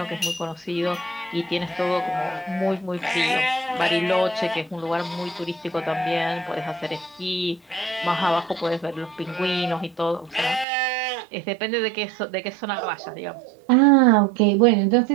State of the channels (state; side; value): drops out; left; at 10.7 s